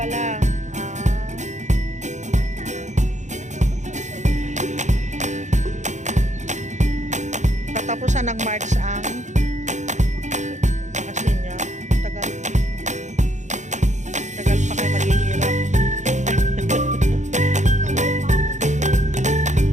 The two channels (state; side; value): late; left; 0.35 ms